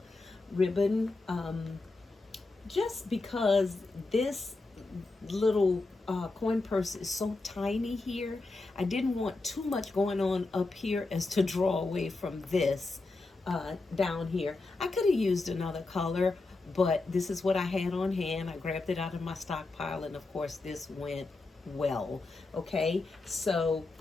ribbon. Just because this little coin purse is so tiny here, I didn't want too much going on up here as to draw away from this down here. I could have used another color, but this is what I had on hand. I grabbed it out of my stockpile, and of course this went well. Okay, so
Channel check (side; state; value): right; quieter; 3.4 dB